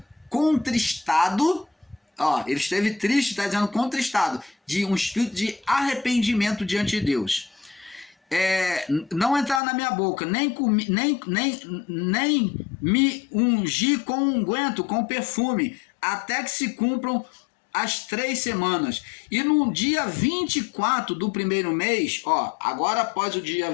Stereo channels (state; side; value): drops out; right; at 9.6 s